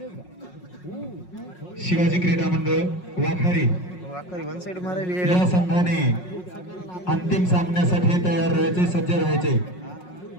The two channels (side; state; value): right; late; 5.5 ms